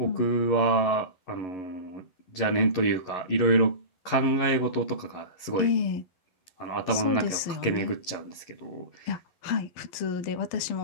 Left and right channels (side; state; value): right; late; 11 ms